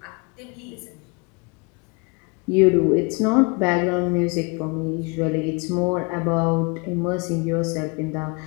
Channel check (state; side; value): quieter; right; 30.8 dB